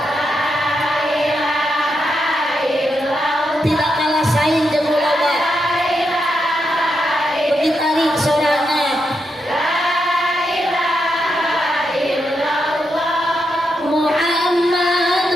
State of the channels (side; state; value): both; normal; correlation 0.83